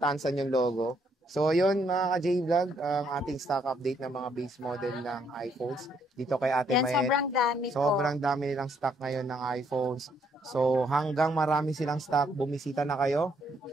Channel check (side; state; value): both; normal; correlation 0.71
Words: yung logo. So, yun mga ka-J-Vlog, ang ating stock update ng mga base model ng iPhones. Dito kay Ate Yan, Mayet. sobrang dami po. Sobrang dami nilang stock ngayon ng iPhones. So, hanggang marami silang stock, bumisita na kayo.